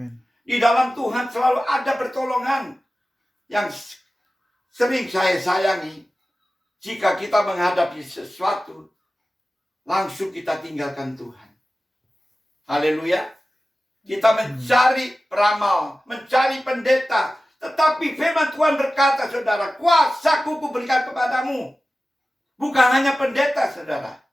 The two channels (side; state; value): both; normal; correlation 0.95